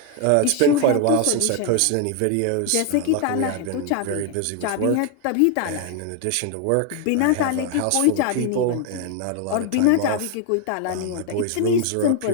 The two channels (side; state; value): both; different; correlation 0.01